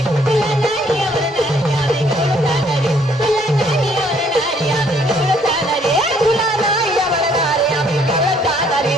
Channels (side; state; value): both; normal; correlation 0.64